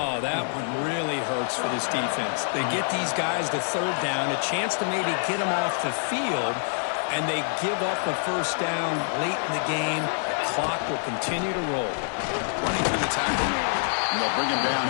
that one really hurts for this defense. They get these guys to 3rd down, a chance to maybe get them off the field, and they give up a 1st down late in the game. The clock will continue to roll. Running through the tackle. And they'll bring him down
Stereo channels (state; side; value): silent; right; digital silence